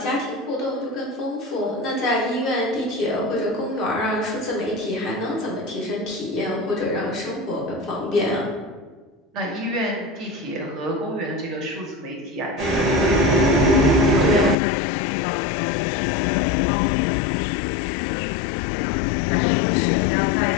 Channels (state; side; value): drops out; right; at 14.6 s